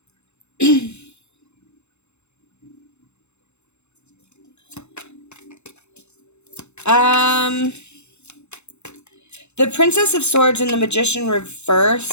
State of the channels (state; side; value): late; right; 0.82 ms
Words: The Princess of Swords and the Magician